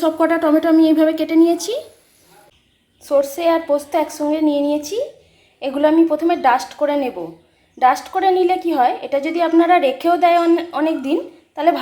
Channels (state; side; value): identical; both; correlation 1.00